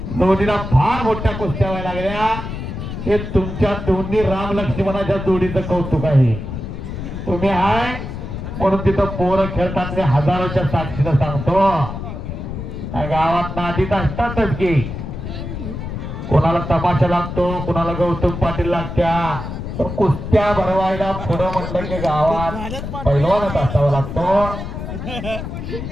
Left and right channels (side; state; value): left; noise; rumble, 7 dB below the sound